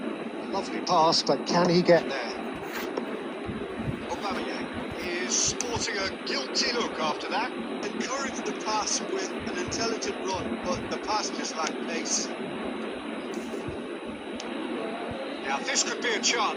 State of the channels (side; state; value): both; identical; correlation 1.00